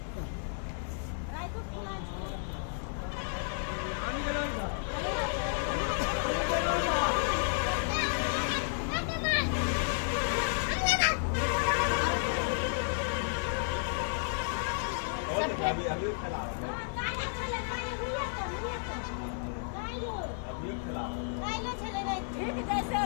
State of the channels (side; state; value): right; silent; 56 dB below the other